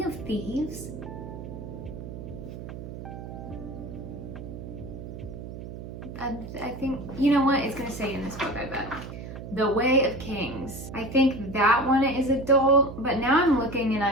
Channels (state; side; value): noise; right; hum, 10 dB below the sound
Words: of Thieves? I think, you know what? It's gonna say in this book, I bet. The Way of Kings. I think that one is adult, but now I'm looking and